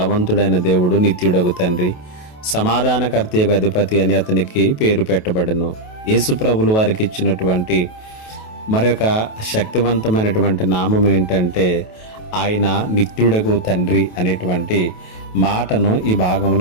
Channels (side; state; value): right; late; 28 ms